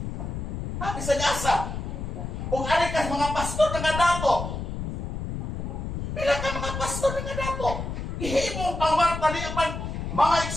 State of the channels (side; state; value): left; noise; rumble, 5 dB below the sound